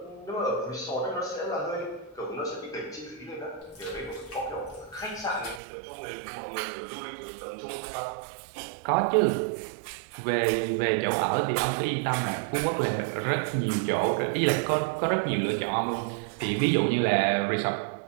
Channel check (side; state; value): left; drops out; at 5.6 s